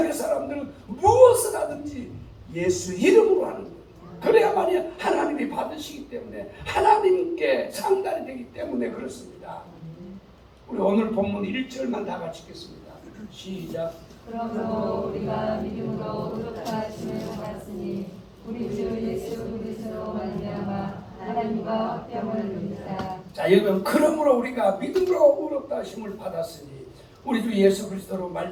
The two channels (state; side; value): identical; both; correlation 1.00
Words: 사람들은 무엇을 하든지 예수 이름으로 하는 거예요. 그래야만이 하나님이 받으시기 때문에 하나님께 상달이 되기 때문에 그렇습니다. 우리 오늘 본문 1절만 다 같이 읽겠습니다. 시작. 그러므로 우리가 믿음으로 의롭다 하심을 받았으니 우리 주 예수 그리스도로 말미암아 하나님과 화평을 누리자. 자 여러분 그러므로 우리가 믿음으로 의롭다 하심을 받았으니 우리 주 예수 그리스도로